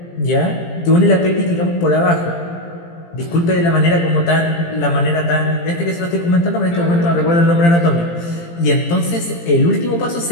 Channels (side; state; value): right; late; 17 ms